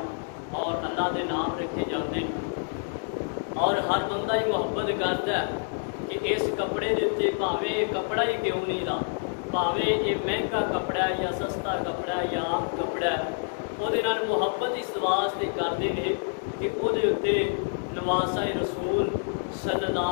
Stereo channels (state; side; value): silent; right; 60 dB below the other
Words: اور اللہ دے نام رکھے جاتے ہیں۔ اور ہر بندہ ہی محبت کرتا ہے کہ اس کپڑے دے اتنے بھاویں یہ کپڑا ہی کیوں نہیں رہا، بھاویں یہ مہنگا کپڑا ہے یا سستا کپڑا ہے یا عام کپڑا ہے، وہ محبت اس واسطے کرتے ہیں کہ وہ نواسا رسول صلی